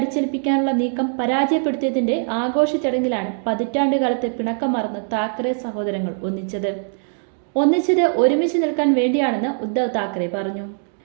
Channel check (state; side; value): silent; left; 65 dB below the other